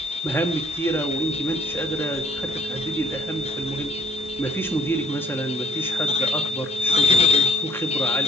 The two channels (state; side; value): normal; both; correlation 0.60